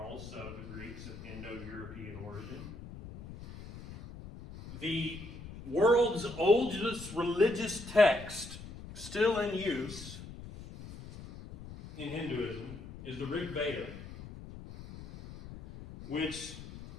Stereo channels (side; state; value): left; noise; rumble, 13 dB below the sound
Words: the Greeks of Indo-European origin. The world's oldest religious text still in use in Hinduism is the Rig Veda, which